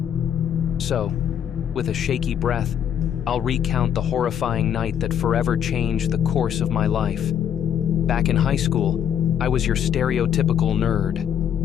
So, with a shaky breath, I'll recount the horrifying night that forever changed the course of my life. Back in high school, I was your stereotypical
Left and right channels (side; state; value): right; quieter; 9.1 dB